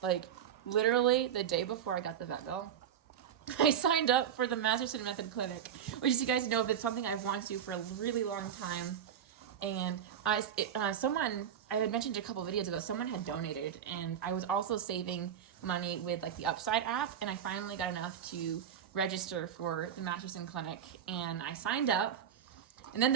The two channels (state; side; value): quieter; left; 9.1 dB